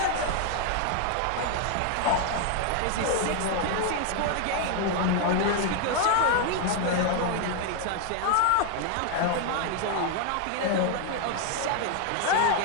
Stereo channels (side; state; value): both; different; correlation 0.00